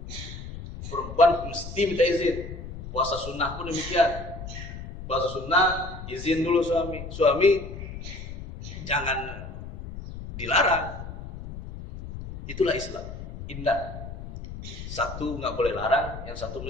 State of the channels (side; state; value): left; noise; rumble, 10 dB below the sound